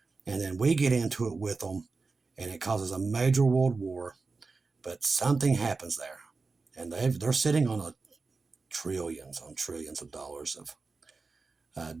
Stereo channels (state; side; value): quieter; left; 4.1 dB